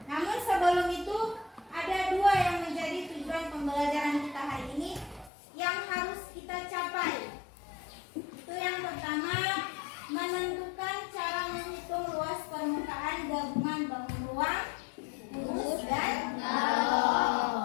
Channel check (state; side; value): drops out; right; at 5.3 s